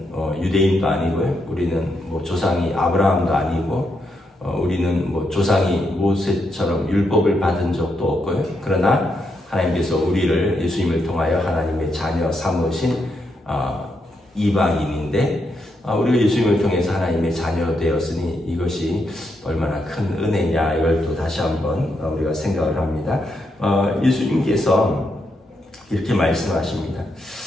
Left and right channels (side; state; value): both; normal; correlation 0.81